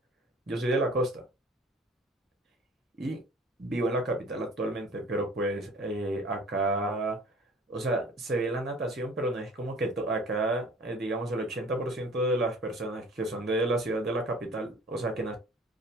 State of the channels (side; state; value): both; normal; correlation 0.48